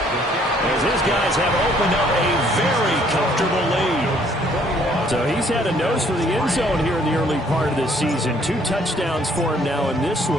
As his guys have opened up a very comfortable lead. So he's had a nose for the end zone here in the early part of this season. 2 touchdowns for him now in this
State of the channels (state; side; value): normal; both; correlation 0.63